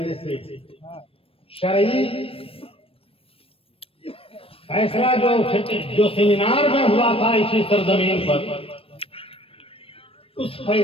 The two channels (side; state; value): right; late; 0.27 ms